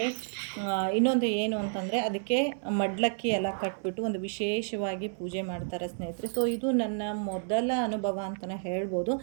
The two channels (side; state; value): left; silent; digital silence